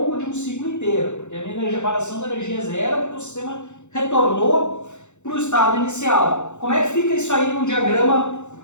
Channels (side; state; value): right; late; 0.83 ms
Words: de um ciclo inteiro, porque a minha variação da energia é zero, porque o sistema retornou para o estado inicial. Como é que fica isso aí num diagrama